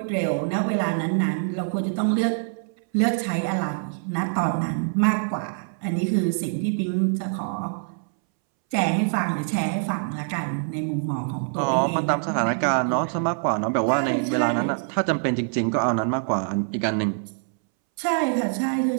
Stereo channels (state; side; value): silent; left; 62 dB below the other